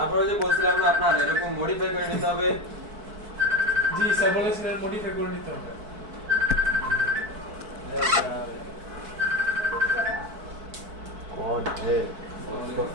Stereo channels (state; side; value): late; left; 4.6 ms